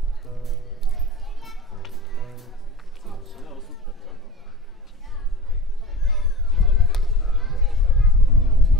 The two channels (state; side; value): normal; both; correlation 0.35